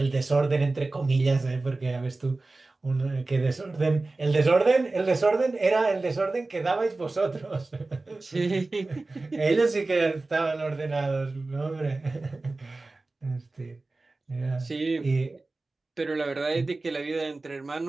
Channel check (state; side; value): quieter; left; 3.3 dB